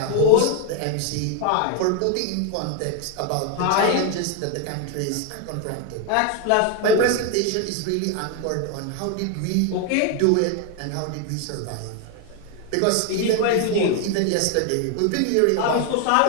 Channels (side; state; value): both; different; correlation 0.01